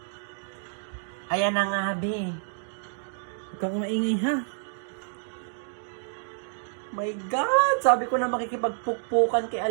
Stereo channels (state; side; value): silent; left; digital silence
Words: Ayan na nga, be. Huwag kang maingay, ha? My God! Sabi ko na makikipagpukpukan kay